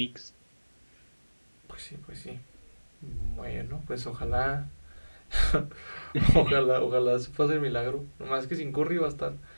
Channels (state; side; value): inverted; both; correlation -1.00